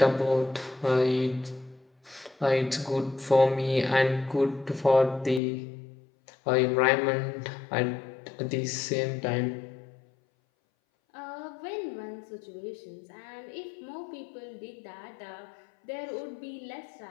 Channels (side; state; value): right; drops out; at 5.4 s